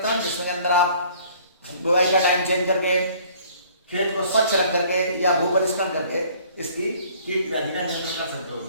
जिसमें अंदर आप बुआई का टाइम चेंज करके, खेत को स्वच्छ रख करके या भू परिष्करण करके इसकी कीट व्याधि का नियंत्रण कर सकते हो।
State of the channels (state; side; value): inverted; both; correlation -0.55